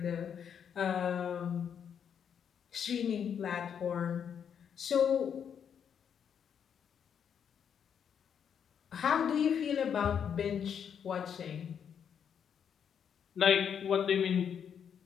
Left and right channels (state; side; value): quieter; right; 7.9 dB